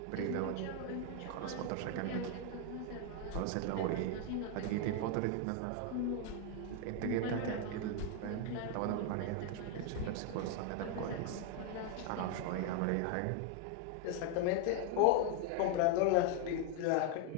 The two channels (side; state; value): both; different; correlation 0.00